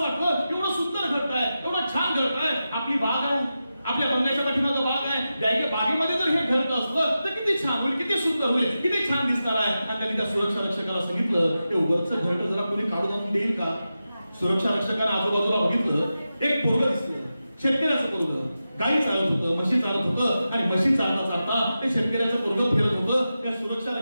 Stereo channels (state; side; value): inverted; both; correlation -0.92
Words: एवढं सुंदर घरटं आहे, एवढं छान घरटं आहे, आपली बाग आहे, आपल्या बंगल्याच्या पाठीमागं बाग आहे. बागेमध्ये जर हे घरटं असतं तर किती छान होईल, किती सुंदर होईल, किती छान दिसणार आहे. आणि त्यांनी त्या सुरक्षा रक्षकाला सांगितलं ते उगरचं घरटं जरा कोणी काढून आणून देईल का? सुरक्षा रक्षकाने आजूबाजूला बघितलं, एक पोरगं दिसलं, शेतकऱ्याचं पोरगं. गाई चालत होतं, म्हशी चालत होतं. आणि म्हशी चालता चालता ते शेतकऱ्याचं पोरगं फिरत होतं. त्या सुरक्षा